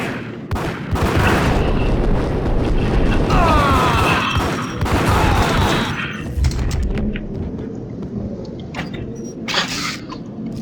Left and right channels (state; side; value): identical; both; correlation 1.00